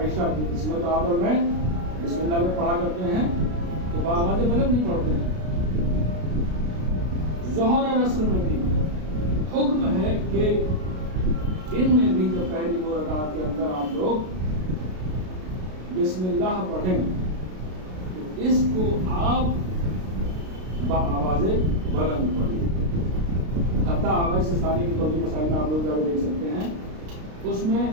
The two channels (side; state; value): left; late; 32 ms